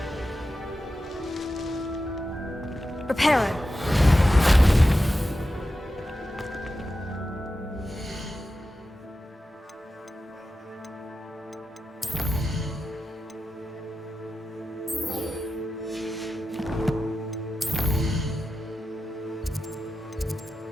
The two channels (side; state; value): both; normal; correlation 0.92